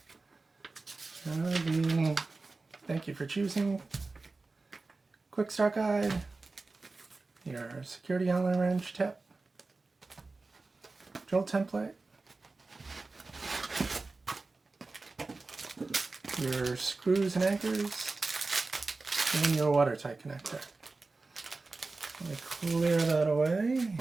Thank you for choosing. Quick start guide, your security Allen wrench tip, drill template, your screws and anchors, and your watertight connector. Let me clear that away.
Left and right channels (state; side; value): quieter; left; 3.6 dB